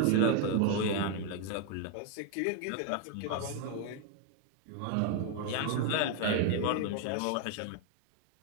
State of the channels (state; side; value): different; both; correlation 0.00